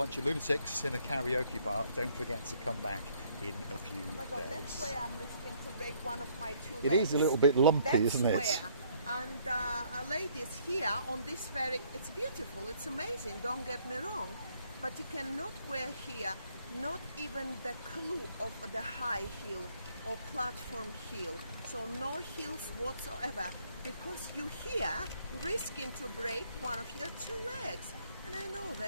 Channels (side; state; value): both; inverted; correlation -0.65